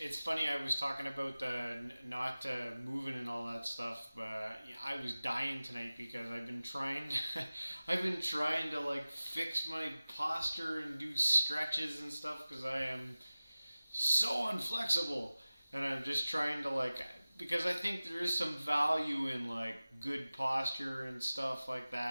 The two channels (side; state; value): both; inverted; correlation -0.96